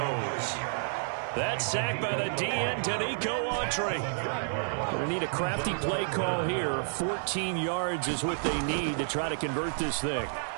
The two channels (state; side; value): silent; left; 56 dB below the other